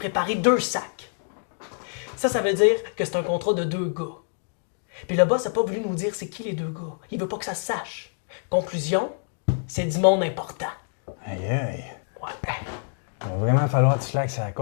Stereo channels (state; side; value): silent; right; digital silence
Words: 2 sacs. Ça veut dire que c'est un contrat de 2 gars. Puis le boss n'a pas voulu nous dire c'est qui les 2 gars. Il veut pas que ça se sache. Conclusion, c'est du monde important. Aïe aïe. Ouais. Il va vraiment falloir que tu slackes la